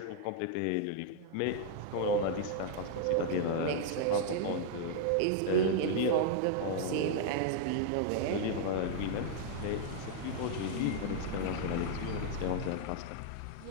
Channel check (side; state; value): both; different; correlation -0.01